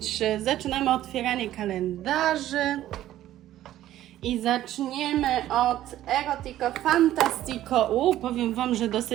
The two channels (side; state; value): left; quieter; 13.4 dB